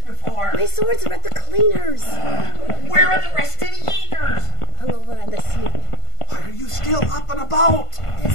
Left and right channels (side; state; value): right; late; 1.5 ms